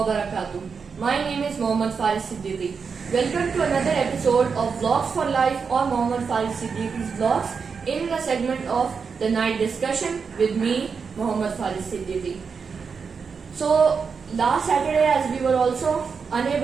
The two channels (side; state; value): left; quieter; 5.6 dB